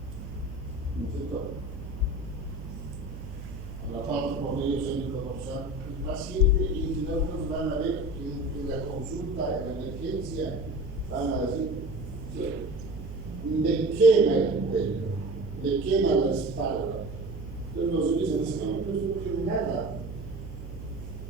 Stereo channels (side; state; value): right; noise; hum, 10 dB below the sound